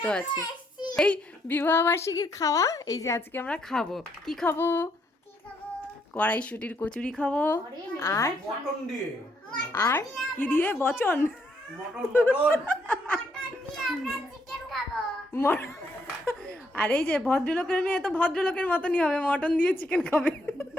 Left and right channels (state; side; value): normal; both; correlation 0.73